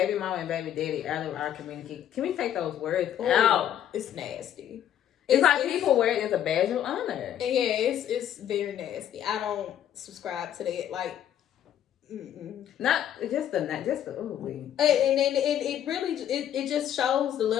mama and baby daddy out of our community. Can we take those words out? It's nasty. It's like people wear it as a badge of honor. Yeah, it's very nasty. I don't subscribe to that. Like, not just the and it really it just shows the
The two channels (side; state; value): right; quieter; 10.5 dB